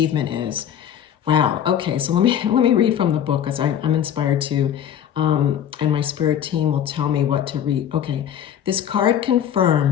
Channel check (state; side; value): quieter; right; 9.6 dB